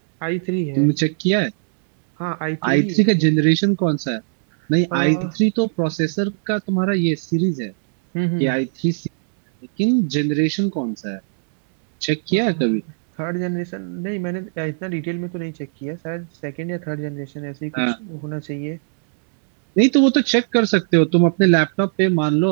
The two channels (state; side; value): silent; left; digital silence